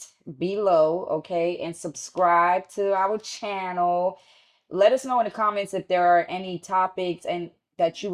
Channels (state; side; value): identical; both; correlation 1.00